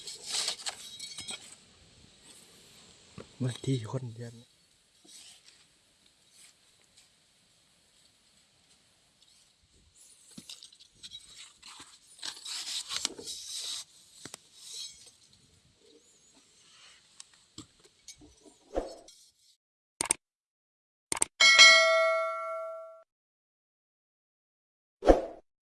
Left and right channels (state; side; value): identical; both; correlation 1.00